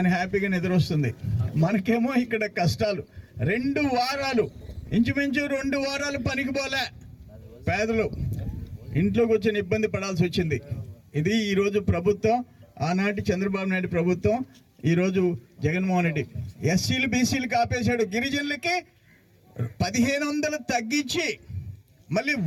హ్యాపీగా నిద్ర వస్తుంది. మనకేమో ఇక్కడ కష్టాలు. 2 వారాలు, ఇంచుమించు 2 వారాలు పనికి పోలే పేదలు. ఇంట్లోకి వచ్చిన ఇబ్బంది పడాల్సి వచ్చింది. ఇది ఈరోజు ప్రభుత్వం. ఆనాటి చంద్రబాబు నాయుడు ప్రభుత్వం, ఈరోజు జగన్మోహన్ రెడ్డి. ఎస్సీలు బీసీలకు ఆపేశాడు. గిరిజనులకి 1500 తగ్గించి మళ్ళీ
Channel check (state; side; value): identical; both; correlation 1.00